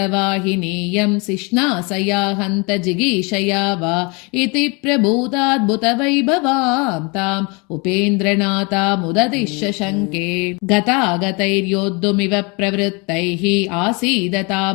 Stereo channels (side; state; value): right; quieter; 30.1 dB